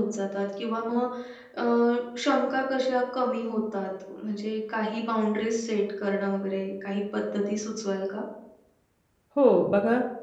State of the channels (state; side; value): identical; both; correlation 1.00